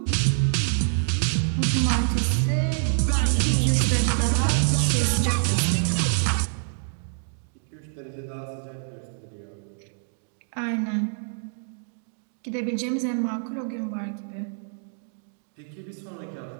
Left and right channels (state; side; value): silent; left; digital silence